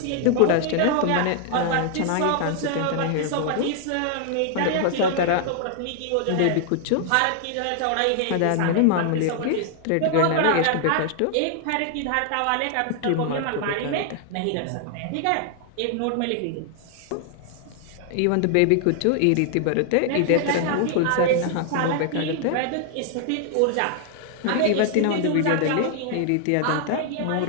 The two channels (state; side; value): different; both; correlation 0.00